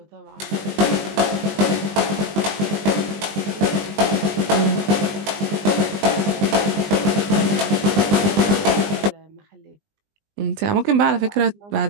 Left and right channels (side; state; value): left; late; 20 ms